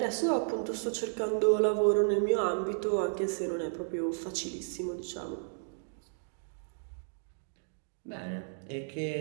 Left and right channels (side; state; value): left; silent; digital silence